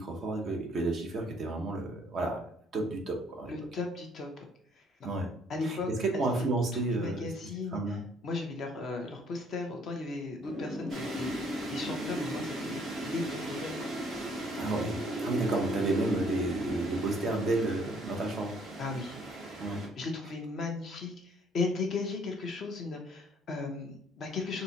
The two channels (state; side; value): normal; both; correlation 0.63